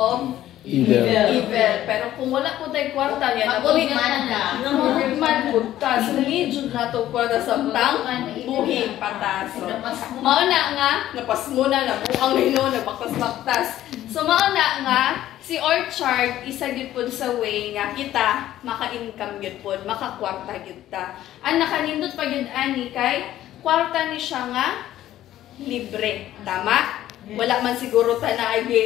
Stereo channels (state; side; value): quieter; right; 13.2 dB